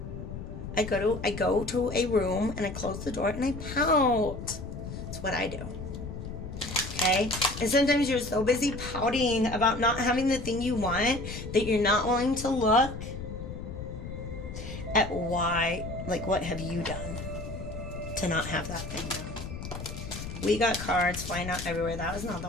I go to a room and I close the door and I pout. That's what I do. Okay? And sometimes you're so busy pouting about not having the thing you want that you're not willing to look at why, like, what have you done to not have that thing done? We got cards. Why not everywhere? That was not the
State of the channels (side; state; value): left; noise; rumble, 8 dB below the sound